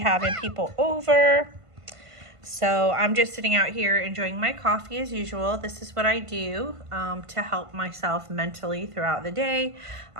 people over. So I'm just sitting out here enjoying my coffee as usual. This is what I do to help myself mentally throughout the day.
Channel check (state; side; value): late; left; 1.5 ms